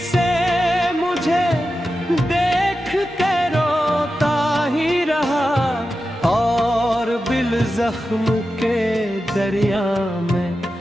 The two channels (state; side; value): normal; both; correlation 0.91